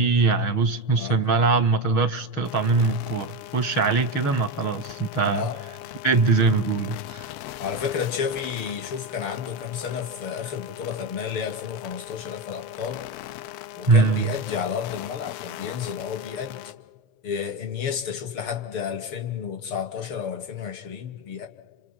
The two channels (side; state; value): right; late; 6.8 ms